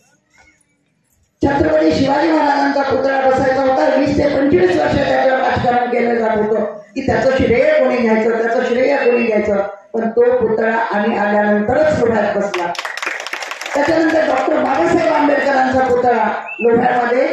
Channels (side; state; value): both; identical; correlation 1.00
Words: छत्रपती शिवाजी महाराजांचा पुतळा बसायचा होता. 20 ते 25 वर्ष त्याच्यावर राजकारण केलं जात होतं की त्याचं श्रेय कोणी घ्यायचं, त्याचं श्रेय कोणी घ्यायचं. पण तो पुतळा आम्ही आल्यानंतरच लोह्यात बसला. त्याच्यानंतर डॉक्टर बाबासाहेब आंबेडकरांचा पुतळा लोह्यामध्ये